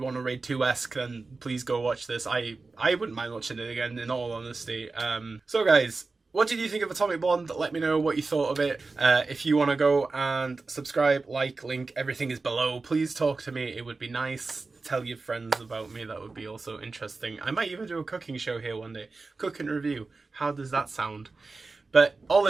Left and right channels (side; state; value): left; quieter; 3.8 dB